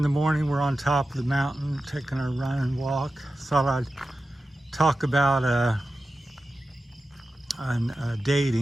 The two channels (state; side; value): normal; both; correlation 0.93